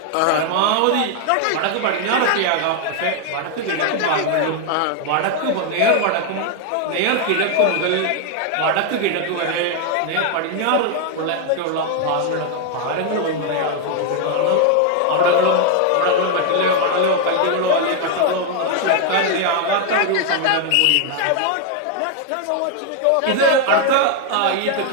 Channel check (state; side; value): different; both; correlation 0.00